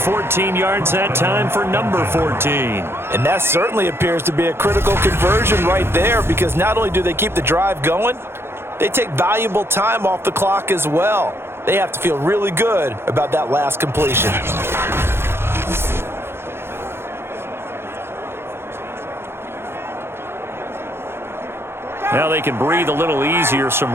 yards that time for number 14. And that certainly appears to be a critical conversion right there, because not only do they keep the drive going, they take valuable time off the clock as well. They have to feel really good about that last completion. Now they can breathe a little easier, some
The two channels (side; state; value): left; late; 0.12 ms